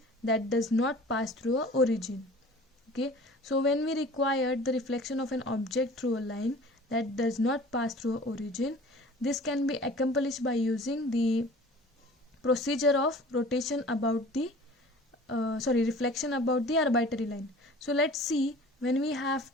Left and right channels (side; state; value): both; normal; correlation 0.44